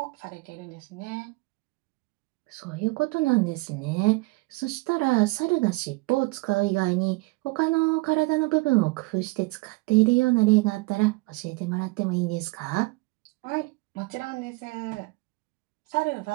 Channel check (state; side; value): quieter; left; 24.5 dB